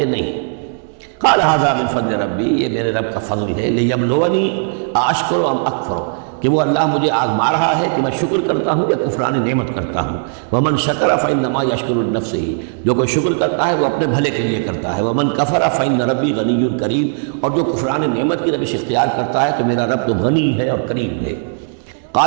نہیں۔ قال ھذا من فضل ربی، یہ میرے رب کا فضل ہے، لیبلونی اشکر ام اکفر، کہ وہ اللہ مجھے آزما رہا ہے کہ میں شکر کرتا ہوں یا کفران نعمت کرتا ہوں۔ ومن شکر فانما یشکر لنفسہ، جو کوئی شکر کرتا ہے وہ اپنے بھلے کے لیے کرتا ہے۔ ومن کفر فان ربی غنی کریم، اور جو کفران نعمت کی روش اختیار کرتا ہے تو میرا رب تو غنی ہے اور کریم ہے۔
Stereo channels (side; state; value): left; silent; 65 dB below the other